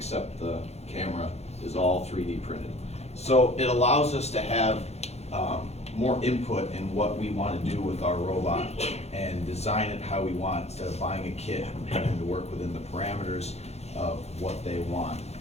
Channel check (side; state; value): right; late; 0.31 ms